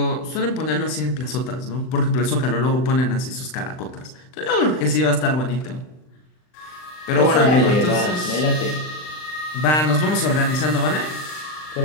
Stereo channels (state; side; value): late; right; 39 ms